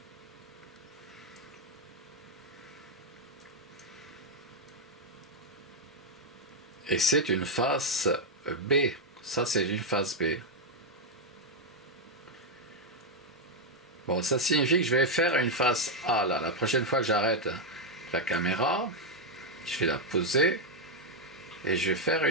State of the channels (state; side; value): normal; both; correlation 0.01